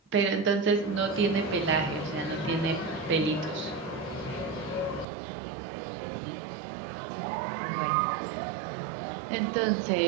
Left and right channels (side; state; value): left; drops out; at 5.1 s